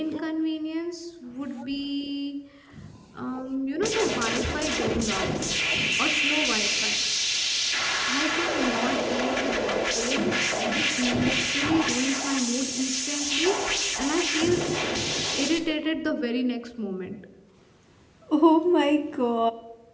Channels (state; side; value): identical; both; correlation 1.00